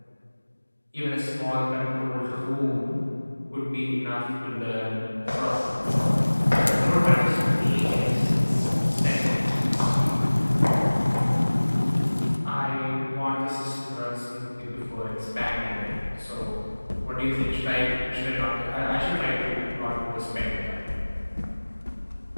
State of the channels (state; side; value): inverted; both; correlation -1.00